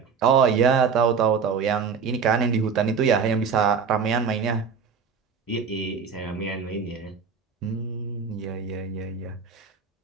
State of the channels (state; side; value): quieter; left; 6.0 dB